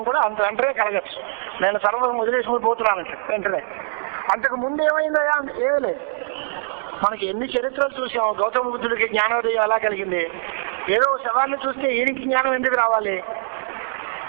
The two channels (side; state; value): left; silent; digital silence